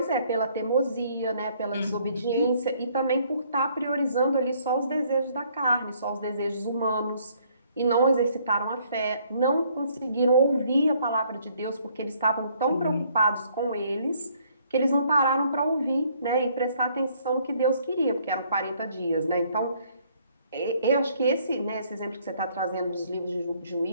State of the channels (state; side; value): inverted; both; correlation -0.64